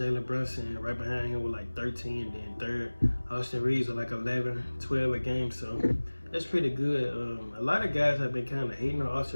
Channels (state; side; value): inverted; both; correlation -1.00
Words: Brunson right behind him with like 13, then third. Austin Reeves with like 11, 12 a game, so that's pretty good. A lot of guys have been kind of hating on